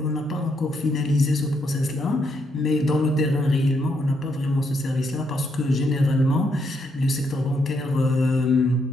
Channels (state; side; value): normal; both; correlation 0.76